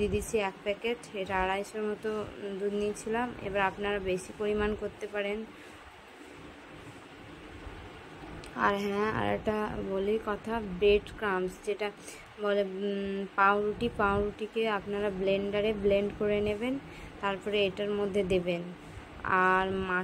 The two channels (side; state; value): both; identical; correlation 1.00